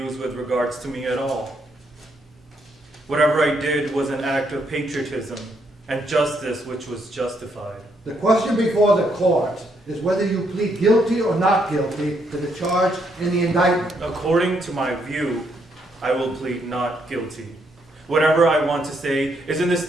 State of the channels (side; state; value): both; normal; correlation 0.74